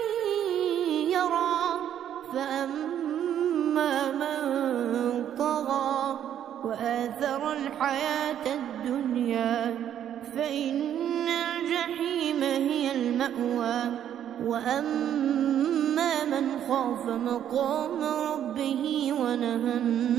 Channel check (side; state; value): left; quieter; 10.2 dB